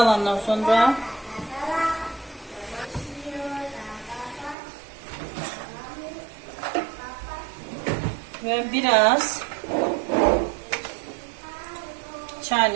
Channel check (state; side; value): drops out; left; at 4.5 s